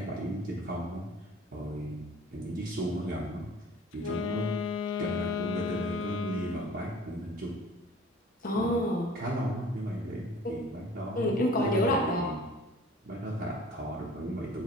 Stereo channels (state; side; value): normal; both; correlation 0.48